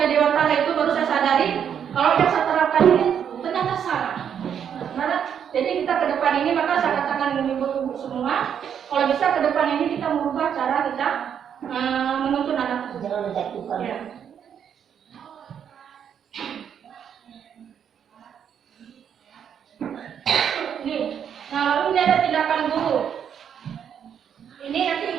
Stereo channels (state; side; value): quieter; left; 8.4 dB